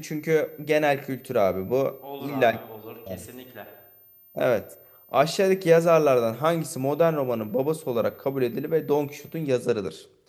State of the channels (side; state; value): both; identical; correlation 1.00